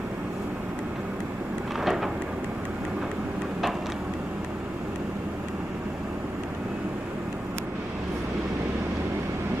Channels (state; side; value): normal; both; correlation 0.91